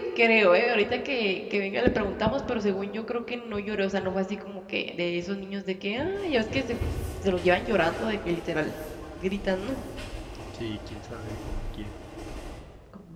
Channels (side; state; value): both; identical; correlation 1.00